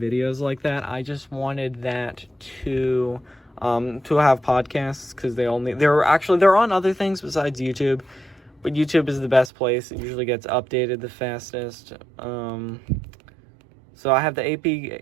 like that. I just wanted that to have podcasts, because they're on other things besides YouTube, but YouTube is the best place. It usually gets updated the fastest. So I have the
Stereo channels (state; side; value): drops out; left; at 9.5 s